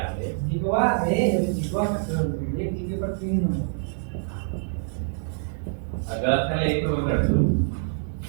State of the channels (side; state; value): left; silent; digital silence